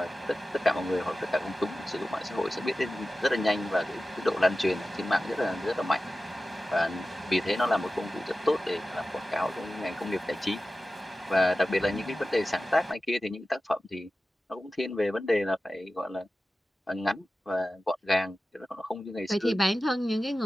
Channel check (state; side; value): normal; both; correlation 0.95